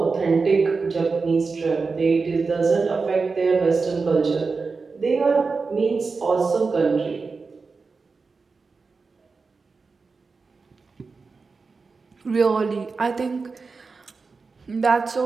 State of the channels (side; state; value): left; quieter; 4.4 dB